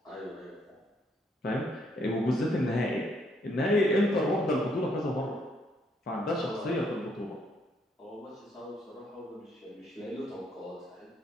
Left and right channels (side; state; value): both; normal; correlation 0.71